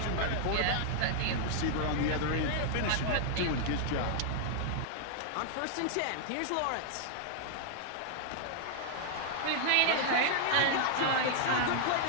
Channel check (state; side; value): different; both; correlation -0.01